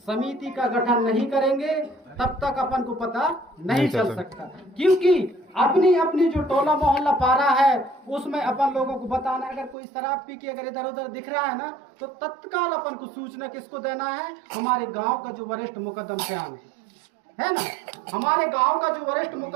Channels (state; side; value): drops out; left; at 9.8 s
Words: समिति का गठन नहीं करेंगे तब तक अपन को पता नहीं चल सकता, क्योंकि अपनी अपनी जो टोला मोहल्ला पारा है उसमें अपन लोगों को बताना है। अगर कोई शराब पी के अगर इधर उधर दिख रहा है ना तो तत्काल अपन को सूचना किसको देना है? हमारे गांव का जो वरिष्ठ मुकद्दम सियान है ना, हमारे गांव का जो वरिष्ठ